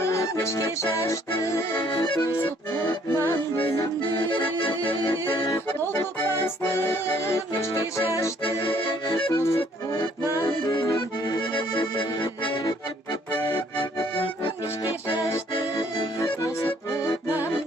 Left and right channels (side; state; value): both; normal; correlation 0.62